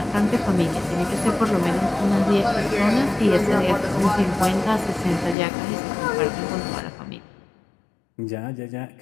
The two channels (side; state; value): right; drops out; at 5.4 s